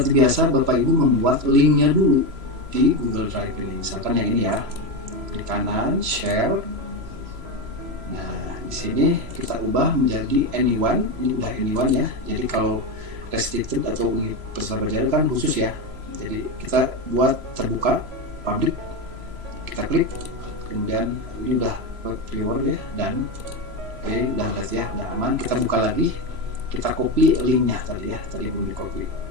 biasa Bapak Ibu membuat linknya dulu di Google Drive ini. Misalkan yang ini ya, klik kanan, share. Nah, di sini kita ubah menjadi anyone. Ini udah anyone ya. Jadi kalau restricted atau peserta belajar kan khusus ya. Jadi kita buat terbuka, public. Kita klik, kemudian ini udah viewer ya, dan oke, udah berarti ya, udah aman. Kita buka lagi, kita copy linknya tadi ya, tadi belum di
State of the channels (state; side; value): late; left; 3.0 ms